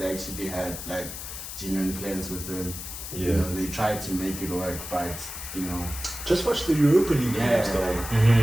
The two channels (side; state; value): left; noise; hiss, 9 dB below the sound